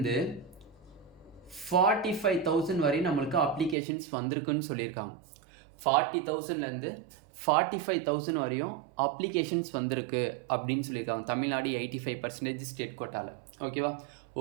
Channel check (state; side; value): drops out; left; at 3.8 s